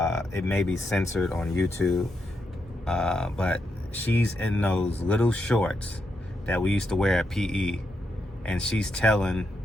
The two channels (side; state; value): both; normal; correlation 0.83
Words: It may be censored on YouTube. But she's in those little shorts that we used to wear at PE, and she's telling